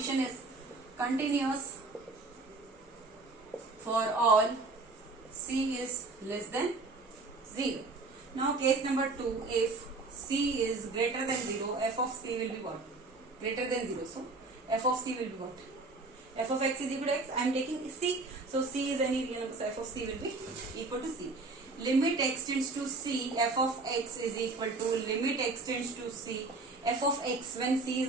is continuous for all c is less than 0. Now case number 2, if c is greater than 0, f of c will be what? Greater than 0. So f of c will be what? F of x is equal to x. I am taking c. So c is any real number. So f of c will be equal to c. Limit x tends to c f of x is equal to limit x tends to c f of x when c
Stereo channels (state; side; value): quieter; left; 3.5 dB